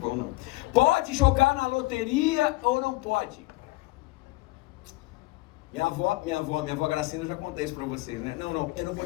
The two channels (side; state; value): right; quieter; 21.3 dB